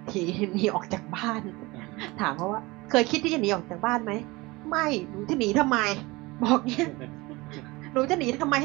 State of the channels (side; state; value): left; quieter; 22.6 dB